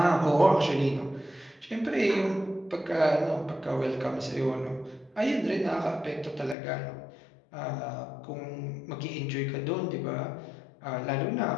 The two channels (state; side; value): drops out; right; at 6.6 s